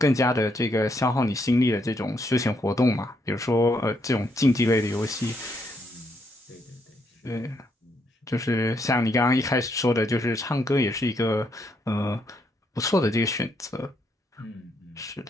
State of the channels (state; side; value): normal; both; correlation 0.75